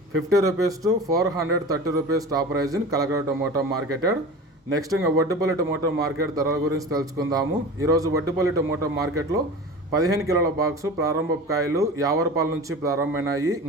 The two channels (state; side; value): normal; both; correlation 0.34